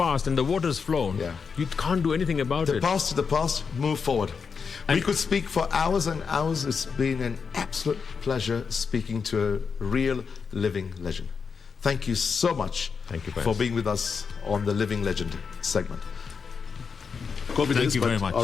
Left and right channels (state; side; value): quieter; right; 5.7 dB